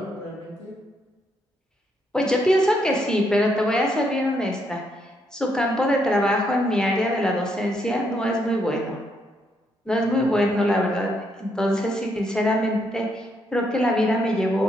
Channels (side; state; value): both; normal; correlation 0.75